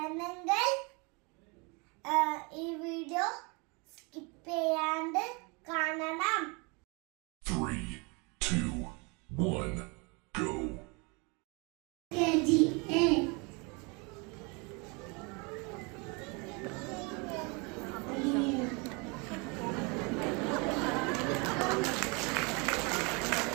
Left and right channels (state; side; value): quieter; left; 30.2 dB